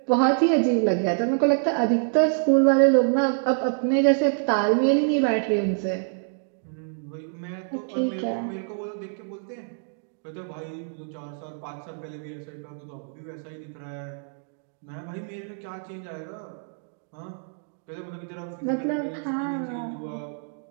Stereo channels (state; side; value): silent; left; digital silence